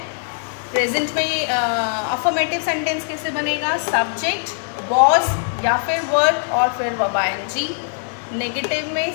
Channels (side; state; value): right; silent; digital silence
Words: प्रेजेंट में अफर्मेटिव सेंटेंस कैसे बनेगा, सब्जेक्ट वॉज या फिर वर और फिर वर्ब आईएनजी। नेगेटिव